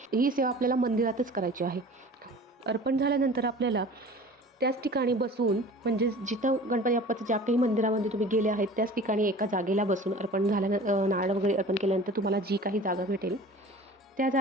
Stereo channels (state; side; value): normal; both; correlation 0.42